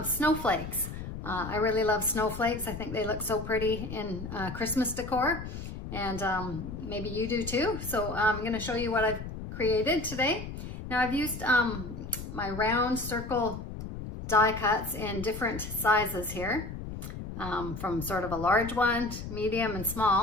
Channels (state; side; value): noise; left; rumble, 8 dB below the sound